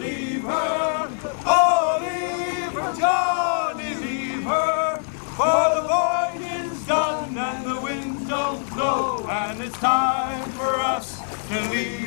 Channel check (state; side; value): silent; right; 58 dB below the other